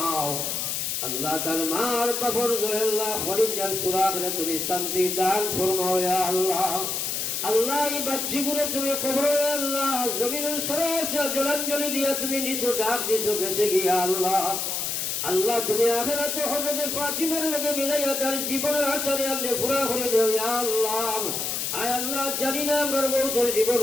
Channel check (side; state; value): left; noise; hiss, 1 dB below the sound